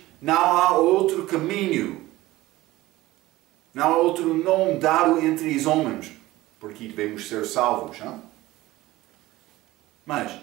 não há outro caminho, não há outro nome dado entre os homens, porque devemos ser salvos. Mas,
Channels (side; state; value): left; quieter; 17.7 dB